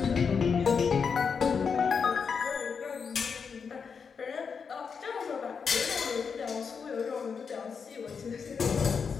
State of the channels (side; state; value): right; quieter; 6.0 dB